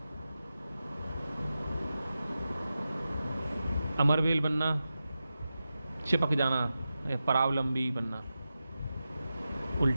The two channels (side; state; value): both; inverted; correlation -0.92